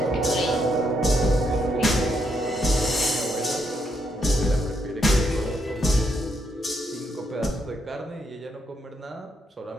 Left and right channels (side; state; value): both; normal; correlation 0.77